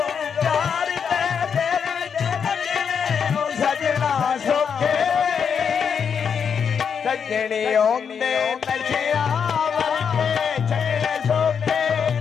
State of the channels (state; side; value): quieter; right; 6.9 dB